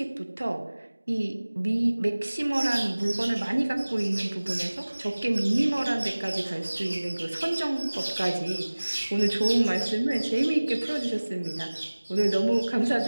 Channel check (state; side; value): inverted; both; correlation -1.00